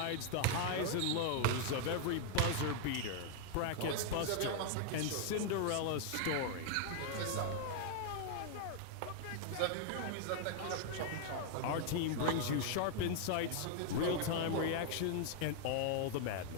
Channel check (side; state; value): both; different; correlation 0.00